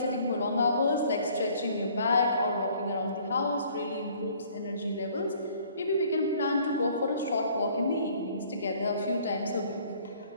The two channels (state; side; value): inverted; both; correlation -0.57